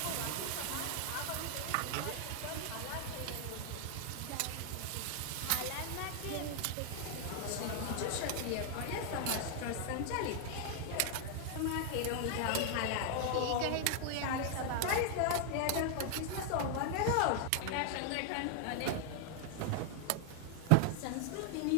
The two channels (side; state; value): both; different; correlation 0.00